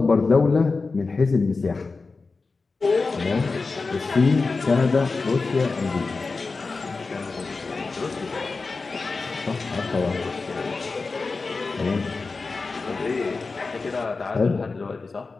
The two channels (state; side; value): quieter; right; 4.1 dB